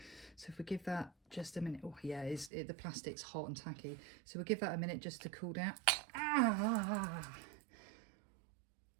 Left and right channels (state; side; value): drops out; left; at 2.5 s